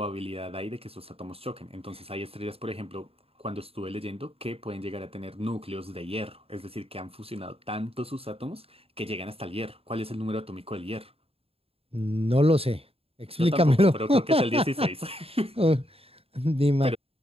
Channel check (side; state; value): left; late; 0.28 ms